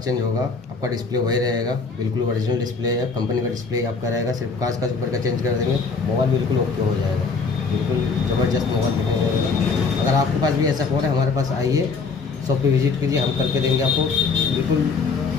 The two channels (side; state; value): right; quieter; 4.6 dB